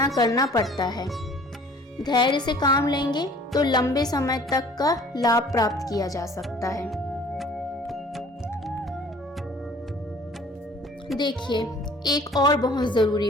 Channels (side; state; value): both; normal; correlation 0.51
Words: करना पड़ता है। धैर्य से काम लेंगे तो लंबे समय तक का लाभ प्राप्त किया जा सकता है। देखिए, एक और बहुत ज़रूरी